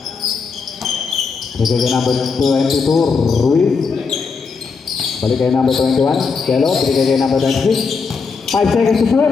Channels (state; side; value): quieter; right; 5.1 dB